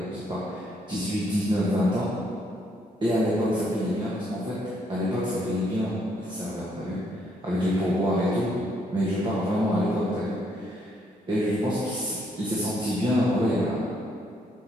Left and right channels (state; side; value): normal; both; correlation 0.71